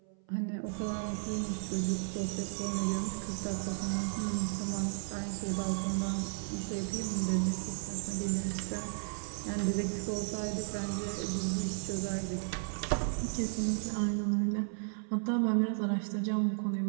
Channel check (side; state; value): left; silent; 55 dB below the other